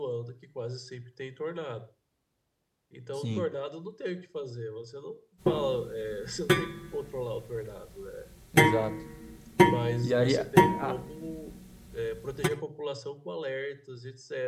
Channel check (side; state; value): both; identical; correlation 1.00